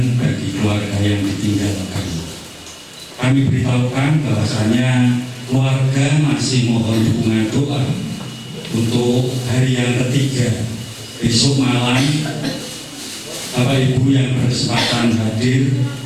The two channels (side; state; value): both; identical; correlation 1.00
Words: bagi keluarga yang ditinggalkan. Kami beritahukan bahwasanya keluarga masih mohon dukungan doa untuk hari yang ketiga besok malam. Bapak Ibu yang berkesempatan hadir